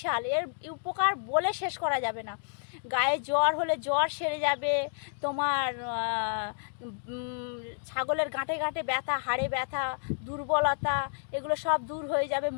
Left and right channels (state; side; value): silent; right; digital silence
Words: এর উপকার বলে শেষ করা যাবে না। গায়ে জ্বর হলে জ্বর সেরে যাবে তোমার। ছাগলের গাঁটে গাঁটে ব্যথা, হাড়ে ব্যথা, দুর্বলতা, এগুলো সব দূর হয়ে যাবে।